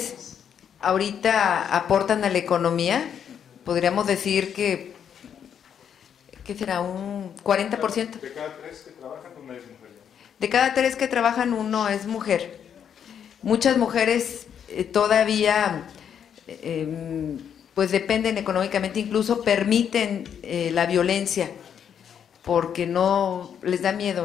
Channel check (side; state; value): right; quieter; 8.4 dB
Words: ahorita aportan a la economía, podríamos decir que será un 40%. De cada 3 que trabajan, una es mujer. De cada 3 que trabajan, 1 es mujer. Muchas mujeres todavía pues dependen económicamente, incluso permiten la violencia porque no les da